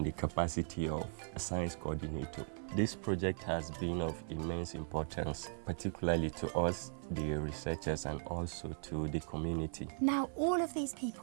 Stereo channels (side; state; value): left; silent; 52 dB below the other